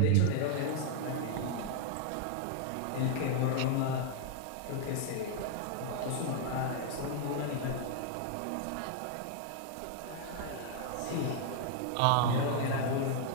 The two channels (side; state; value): both; different; correlation 0.00